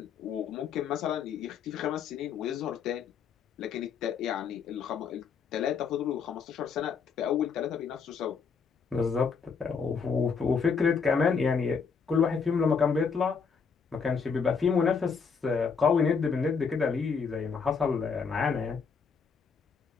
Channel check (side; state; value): right; quieter; 5.8 dB